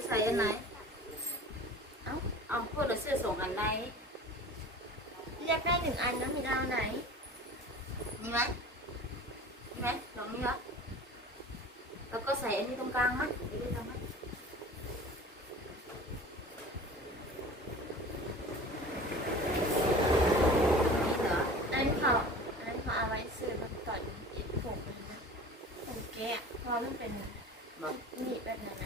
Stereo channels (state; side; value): normal; both; correlation 0.39